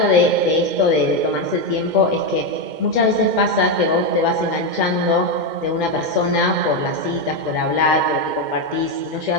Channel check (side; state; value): left; late; 2.1 ms